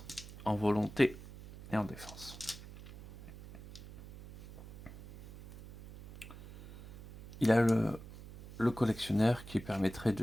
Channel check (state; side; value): noise; right; hum, 16 dB below the sound